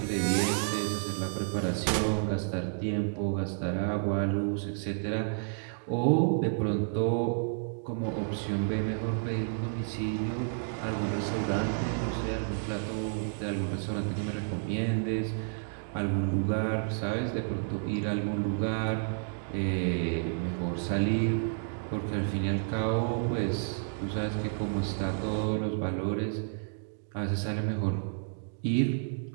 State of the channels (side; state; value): left; silent; digital silence